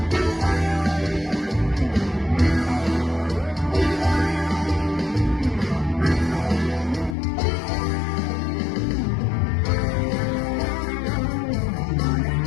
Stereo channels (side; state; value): right; drops out; at 7.2 s